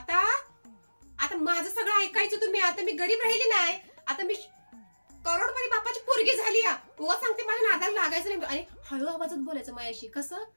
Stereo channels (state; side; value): inverted; both; correlation -1.00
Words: आता माझं सगळं ऐकायचं तुम्ही. आता मी गरीब राहिली नाही. आता मी करोडपती बापाची पोरगी झाली. उगा सांगते मला नादाला लागायचं नाही. आणि हळू आवाजात बोलायचं माझ्याशी. कसं